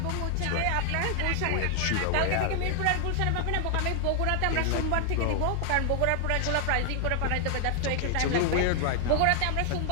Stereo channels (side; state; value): both; different; correlation 0.00